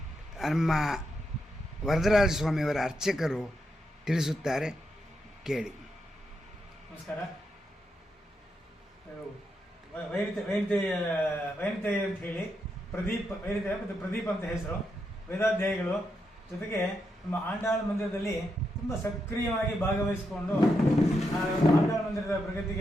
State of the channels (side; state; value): both; normal; correlation 0.83